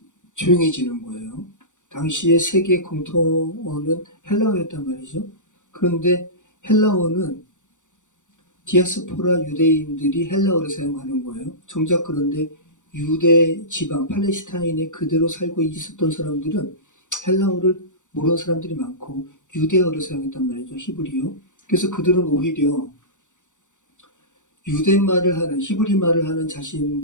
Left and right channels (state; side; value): late; right; 0.86 ms